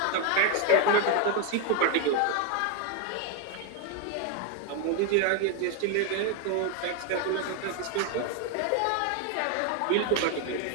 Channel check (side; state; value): both; different; correlation 0.01